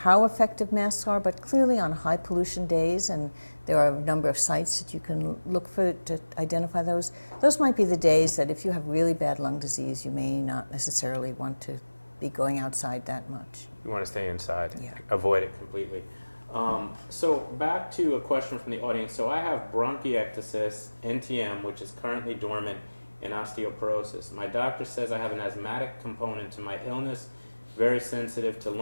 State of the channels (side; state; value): both; inverted; correlation -1.00